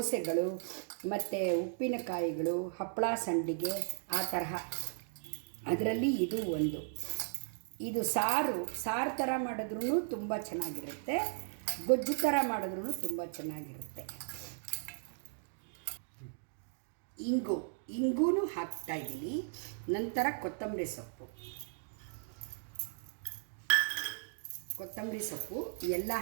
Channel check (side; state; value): left; silent; digital silence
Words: ಮತ್ತು ಉಪ್ಪಿನಕಾಯಿಗಳು, ಹಪ್ಪಳ, ಸಂಡಿಗೆ, ಆ ತರಹ. ಅದರಲ್ಲಿ ಇದು ಒಂದು. ಇದು ಸಾರು ಥರ ಮಾಡಿದ್ರೂ ತುಂಬ ಚೆನ್ನಾಗಿರುತ್ತೆ, ಗೊಜ್ಜು ಥರ ಮಾಡಿದ್ರೂ ತುಂಬ ಚೆನ್ನಾಗಿರುತ್ತೆ. ಇಂಗೂ ಹಾಕ್ತಾಯಿದ್ದೀನಿ. ನಂತರ ಕೊತ್ತಂಬರಿ ಸೊಪ್ಪು ಎಲ್ಲ